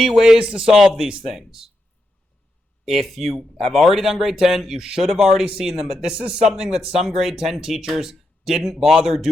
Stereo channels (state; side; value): normal; both; correlation 0.85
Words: ways to solve these things. If you have already done grade 10, you should have already seen them, but this is something that some grade 10 teachers didn't bother